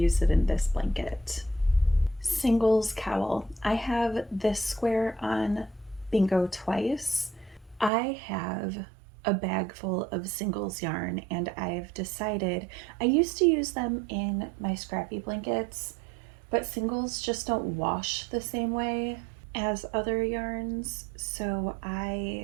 it in this blanket. Singles cowl. I have this square on bingo twice. I have a bag full of singles yarn and I've decided, I used to use them in my scrappy blankets, but singles just don't wash the same way as other yarns, so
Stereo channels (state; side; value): drops out; left; at 7.9 s